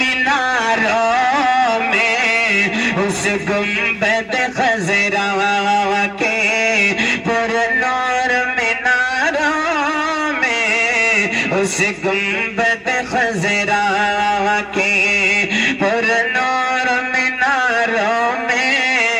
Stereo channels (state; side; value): identical; both; correlation 1.00